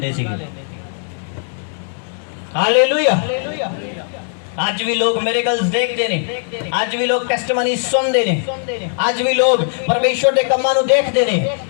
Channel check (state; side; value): silent; right; digital silence